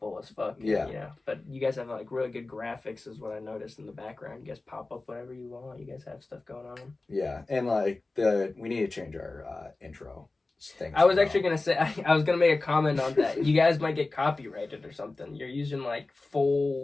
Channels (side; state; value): right; quieter; 3.3 dB